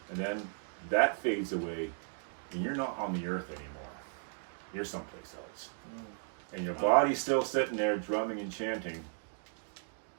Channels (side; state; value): left; silent; 54 dB below the other